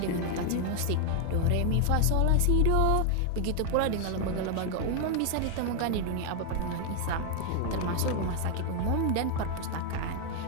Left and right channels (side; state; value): both; different; correlation 0.00